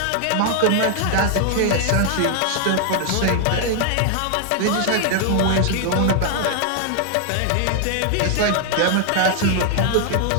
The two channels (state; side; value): different; both; correlation 0.00